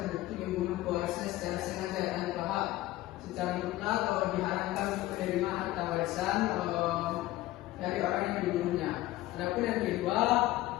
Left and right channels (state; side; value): quieter; right; 16.6 dB